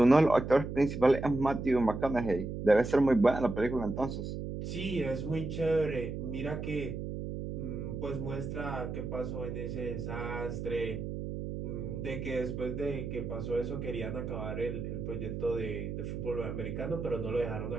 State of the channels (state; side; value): noise; right; hum, 5 dB below the sound